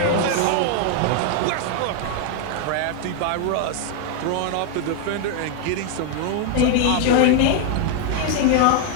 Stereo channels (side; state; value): both; different; correlation 0.00